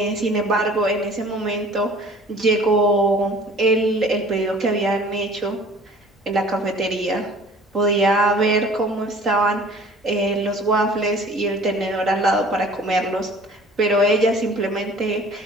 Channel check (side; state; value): both; normal; correlation 0.49